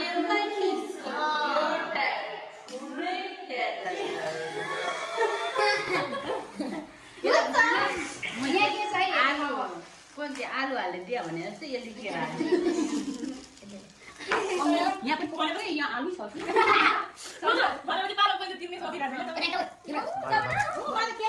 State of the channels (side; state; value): both; identical; correlation 1.00